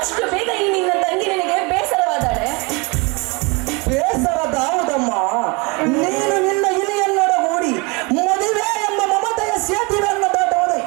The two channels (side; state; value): left; quieter; 28.4 dB